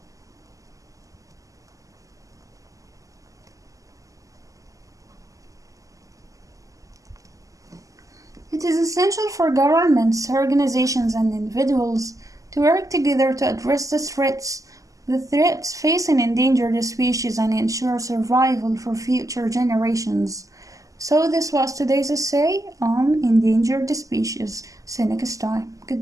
It is essential for governments, organizations, and individuals to work together to address the threats facing endangered species and ensure survival for future generations. So this was today's essay on endangered species. See you next time.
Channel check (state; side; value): late; left; 0.16 ms